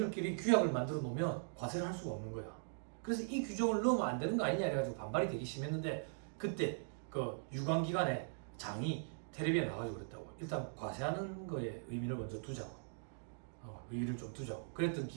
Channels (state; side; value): silent; left; digital silence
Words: 규약을 만들어 놓으면 과세를 할 수가 없는 거야. 그래서 이 규정을 넣으면 안 되는 거 아니냐 해가지고 반발이 되게 심했는데 그때 그 유관기관의 장이 텔레비에 나와가지고 그랬다고. 일단 과세하는 거에 의미를 먼저 두자고. 의의를 좀 두자고. 그랬던